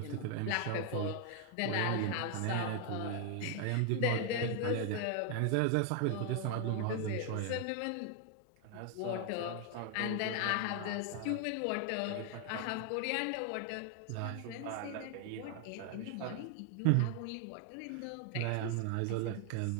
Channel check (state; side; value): different; both; correlation 0.00